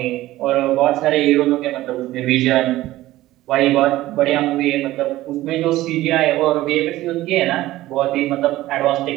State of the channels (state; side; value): quieter; left; 16.2 dB